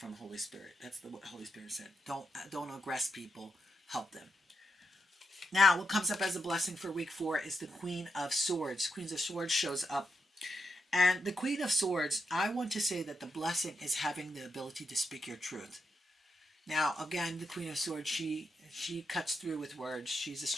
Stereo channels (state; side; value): normal; both; correlation 0.83